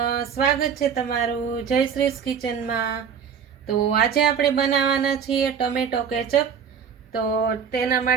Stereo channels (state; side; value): quieter; left; 7.2 dB